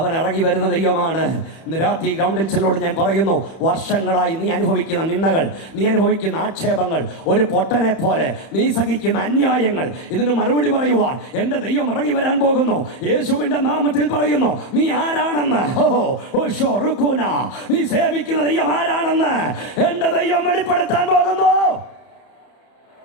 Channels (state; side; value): late; right; 31 ms